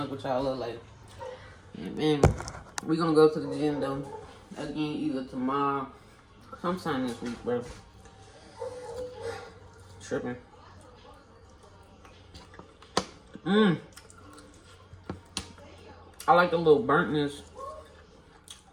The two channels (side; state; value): both; identical; correlation 1.00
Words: with y'all a little later. Yeah, man. We gonna go to the gym though. Again, either tomorrow, sometime this week, bro. Tripping. I like the little burntness